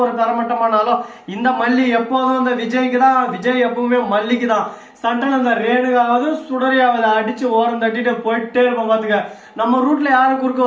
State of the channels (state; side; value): identical; both; correlation 1.00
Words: ஒரு தரமட்டமானாலும் இந்த மல்லி எப்போதும் இந்த விஜய்க்கு தான், விஜய் எப்பவுமே மல்லிக்கு தான். சண்டல இந்த ரேணுகாவது சுடரியாவது அடிச்சு ஓரம் தட்டிட்டு போயிட்டே இருப்போம். பாத்துக்க, நம்ம ரூட்ல யாரும் குறுக்க